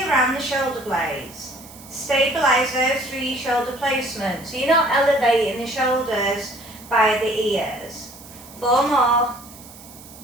around the shoulder blades. Stabilise those through your shoulder placement. So you're not elevating the shoulders by the ears. 4 more.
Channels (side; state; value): right; noise; hiss, 19 dB below the sound